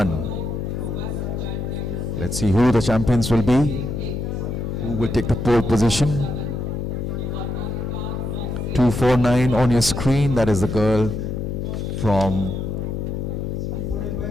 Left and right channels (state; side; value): noise; left; hum, 3 dB below the sound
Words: Let's see who the champions will be. Who will take the pole position? 249 on your screen, that is the girl from